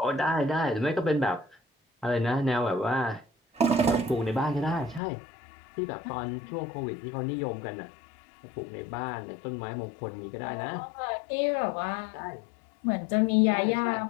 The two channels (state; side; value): drops out; right; at 5.0 s